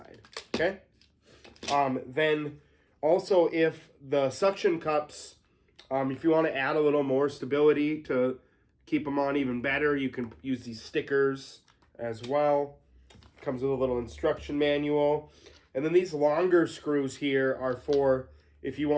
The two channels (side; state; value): both; identical; correlation 1.00